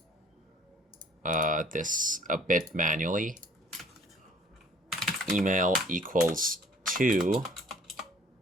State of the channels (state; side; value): normal; both; correlation 0.55